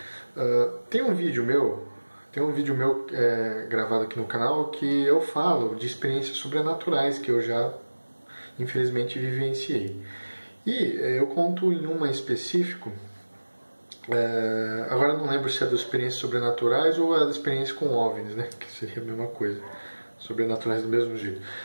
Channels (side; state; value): both; inverted; correlation -1.00